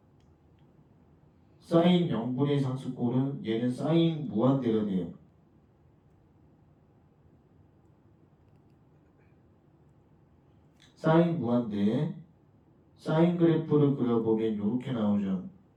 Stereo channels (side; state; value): both; identical; correlation 1.00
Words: 사인 0분의 상수꼴은 얘는 사인 무한대가 돼요. 사인 무한대, 사인 그래프를 그려보면 이렇게 나오죠.